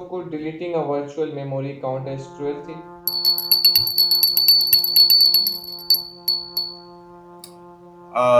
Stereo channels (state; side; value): identical; both; correlation 1.00